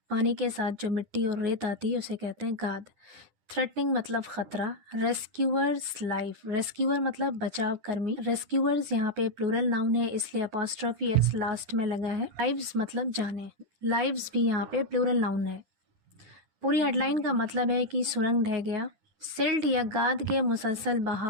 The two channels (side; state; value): left; late; 10 ms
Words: पानी के साथ जो मिट्टी और रेत आती है उसे कहते हैं गाद। थ्रेटनिंग मतलब खतरा। रेस्क्यूअर्स लाइफ, रेस्क्यूअर मतलब बचाव कर्मी। रेस्क्यूअर्स यहाँ पे प्लूरल नाउन है इसलिए अपॉस्ट्रोफी एस लास्ट में लगा है। लाइव्स मतलब जाने, लाइव्स भी यहाँ पे प्लूरल नाउन है। पूरी हेडलाइन का मतलब है कि सुरंग ढह गया, सिल्ट या गाद के मुसलसल